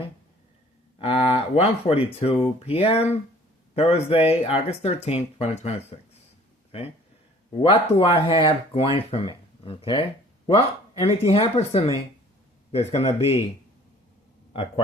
1:42 p.m., Thursday, August 13th, 2026. Okay? What do I have going for me? Okay? Well, anything happens to me, there's going to be a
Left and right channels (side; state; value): both; normal; correlation 0.53